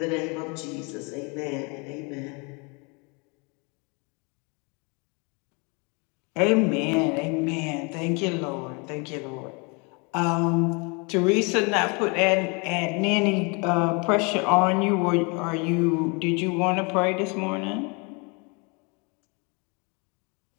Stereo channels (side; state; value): right; quieter; 31.7 dB